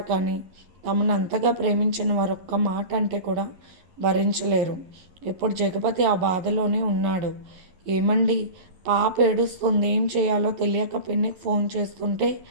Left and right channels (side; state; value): left; late; 11 ms